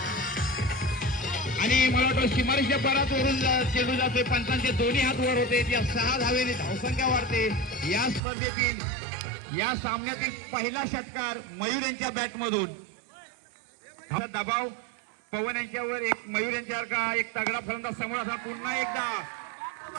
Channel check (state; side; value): drops out; left; at 8.2 s